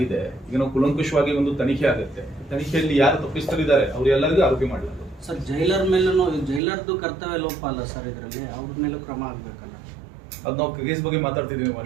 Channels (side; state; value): left; drops out; at 6.6 s